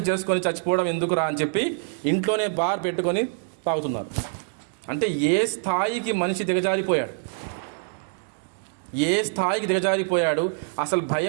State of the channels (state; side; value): silent; left; digital silence